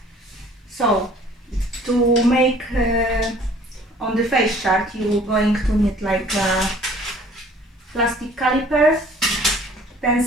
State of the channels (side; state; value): both; normal; correlation 0.53